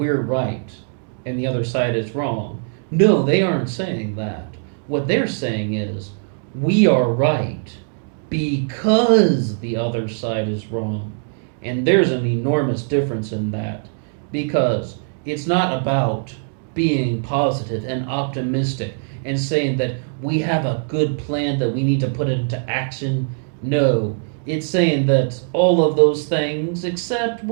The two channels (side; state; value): left; silent; digital silence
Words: right and the other side is wrong. No, they aren't saying that. What they're saying is, we are right because the other side is wrong. And there's an enormous difference in that, because it's not about being positive and optimistic and saying that we have a good plan that we need to put into action. No, it's saying that all of those things, except